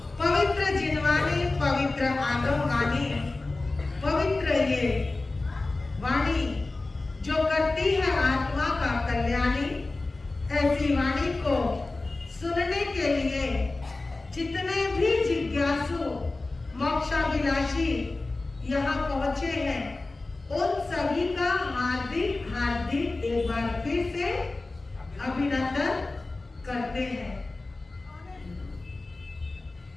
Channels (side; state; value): right; quieter; 3.3 dB